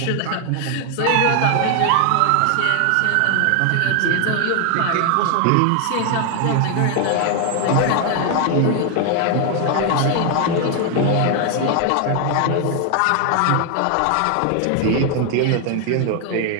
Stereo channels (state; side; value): different; both; correlation 0.00